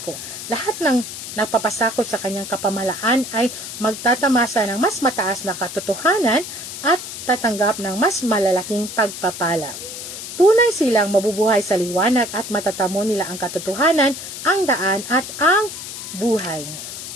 Lahat ng nagpapasakop sa kanyang kapamalaan ay magtatamasa ng mas mataas na katotohanan at tatanggap ng mas malalaking pagpapala. Tunay silang mabubuhay sa liwanag at matatamo nila ang katotohanan, ang daan at ang buhay.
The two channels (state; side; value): noise; left; hiss, 9 dB below the sound